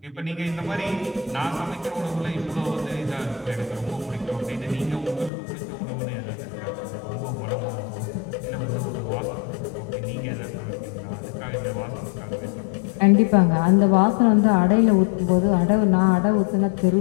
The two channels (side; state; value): right; drops out; at 5.3 s